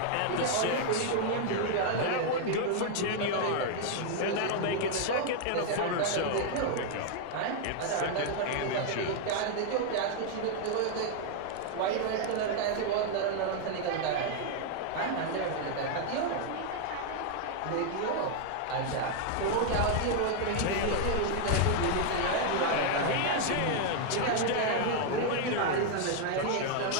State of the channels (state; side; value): different; both; correlation 0.00